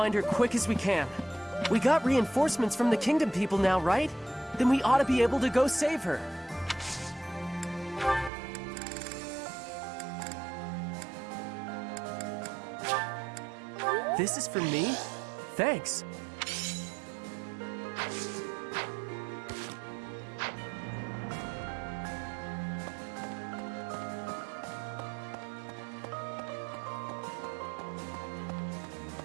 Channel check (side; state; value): left; drops out; at 8.3 s